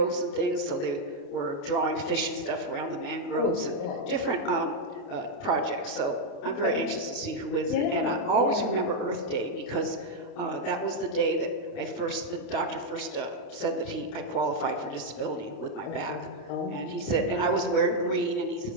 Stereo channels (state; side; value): late; right; 28 ms